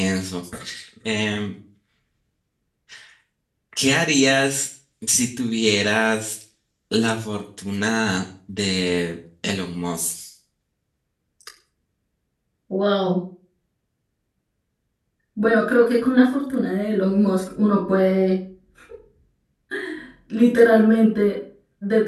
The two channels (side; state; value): both; identical; correlation 1.00